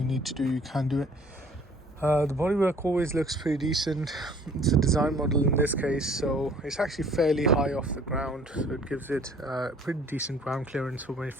need to do, you can do it. The bodywork always looks pretty decent. It's a design model in this case, so it's actually fairly high off the ground, so it gives it pretty decent ground clearance for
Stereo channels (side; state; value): both; normal; correlation 0.55